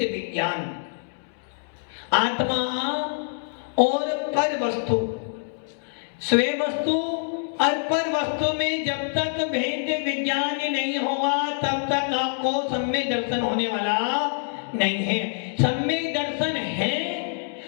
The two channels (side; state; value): right; silent; 61 dB below the other